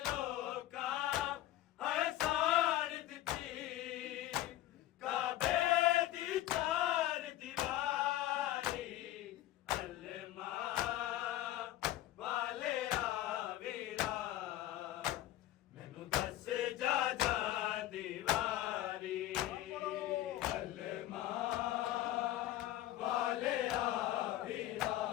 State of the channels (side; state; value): right; quieter; 14.3 dB